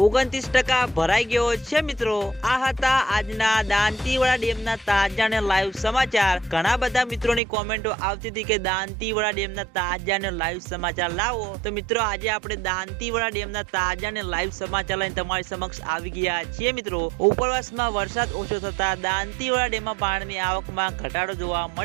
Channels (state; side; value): drops out; left; at 7.4 s